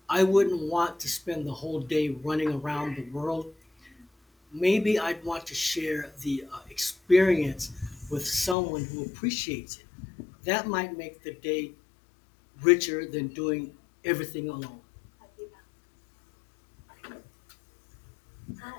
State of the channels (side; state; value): right; drops out; at 8.6 s